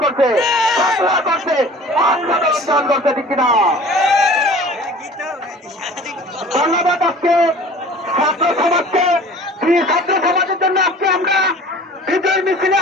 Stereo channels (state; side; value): normal; both; correlation 0.44